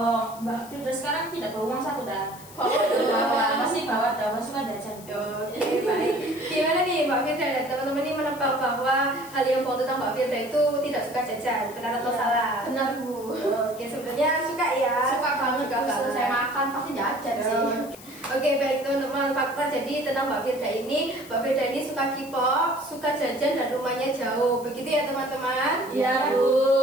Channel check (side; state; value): left; noise; hiss, 19 dB below the sound